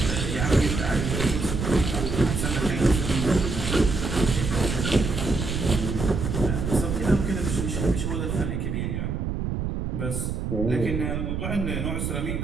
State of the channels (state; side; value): noise; right; rumble, 2 dB below the sound